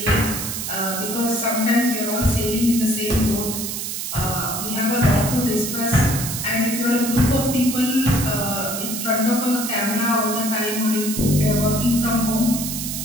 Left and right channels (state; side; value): noise; right; hiss, 4 dB below the sound